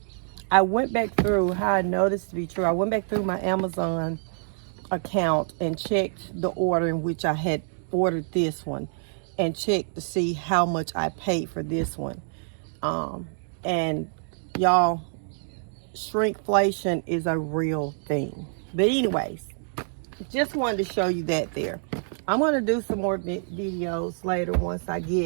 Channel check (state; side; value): silent; left; digital silence